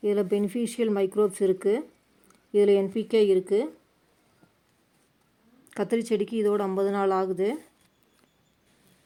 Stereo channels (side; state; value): both; identical; correlation 1.00